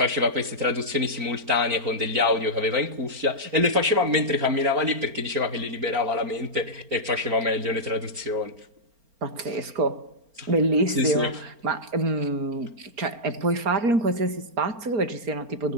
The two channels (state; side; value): late; left; 4.4 ms